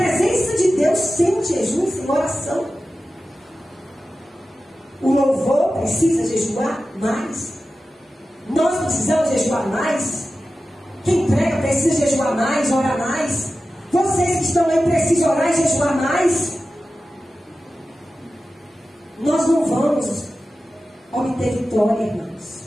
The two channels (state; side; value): normal; both; correlation 0.94